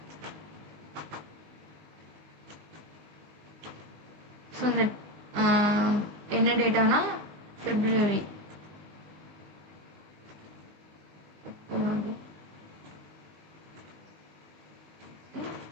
ஸோ இந்த என்ன டேட்டானா ஃபெப்ரவரி.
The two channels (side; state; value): left; late; 20 ms